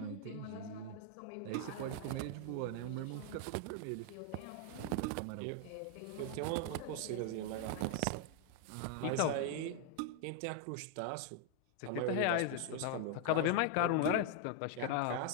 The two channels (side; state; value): both; different; correlation 0.00